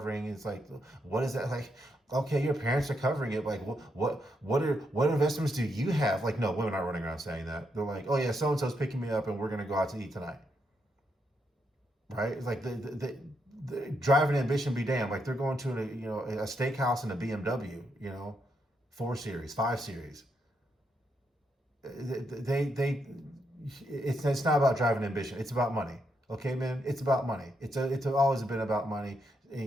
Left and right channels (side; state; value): both; normal; correlation 0.80